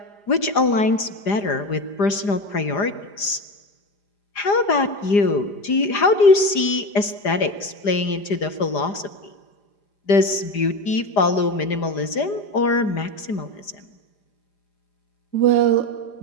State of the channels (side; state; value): right; late; 5.0 ms